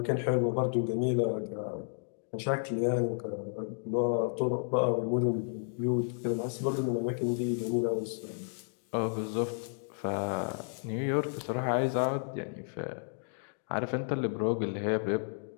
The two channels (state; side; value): silent; right; digital silence